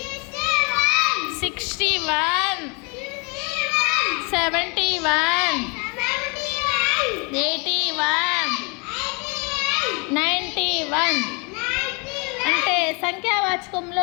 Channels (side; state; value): right; quieter; 32.1 dB